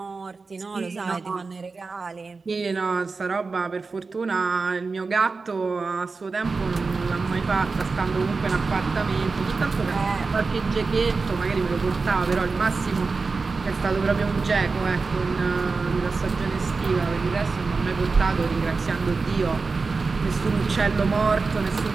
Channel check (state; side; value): quieter; left; 4.2 dB